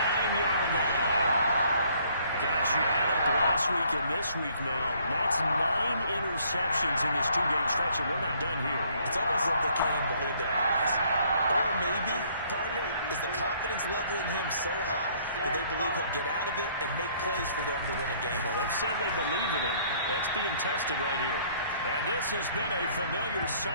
line. Gosh, you add up last week and this week now. That's 9 interceptions in this 2-game stretch, and we're not done here. It's almost like they can't even believe their eyes. Or maybe, partner, is the confidence level in him so high that they believe he'll get out of it and make plays for them to win a game. Well, they've said they believe in him. That's being tested right here. And this has been a familiar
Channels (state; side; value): inverted; both; correlation -0.62